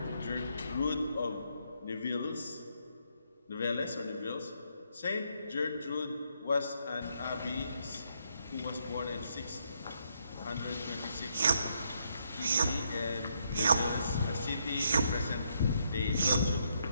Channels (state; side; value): inverted; both; correlation -0.75